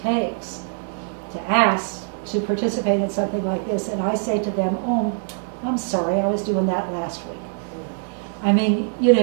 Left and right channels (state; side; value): silent; left; 64 dB below the other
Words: to ask to participate in something like this, and I say to them, oh, I'm sorry, I was doing that last week. I mean,